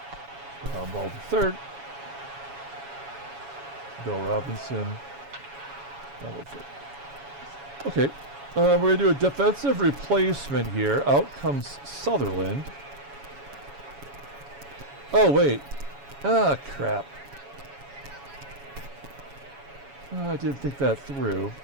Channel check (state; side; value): late; left; 7.2 ms